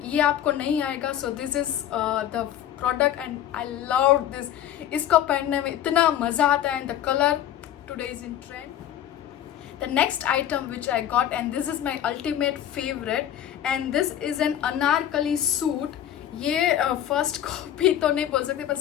ये आपको नहीं आएगा. So this is the product and I love this. इसको पहनने में इतना मजा आता है and the colour today is in trend. The next item which I got, and this is my ultimate favorite, and this is an anarkali suit. ये first copy तो नहीं बोल सकते पर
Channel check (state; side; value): quieter; right; 10.9 dB